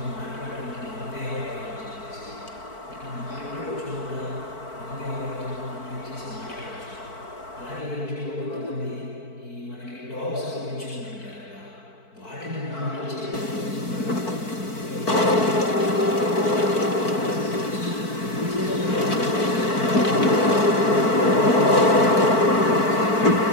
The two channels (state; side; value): late; right; 4.5 ms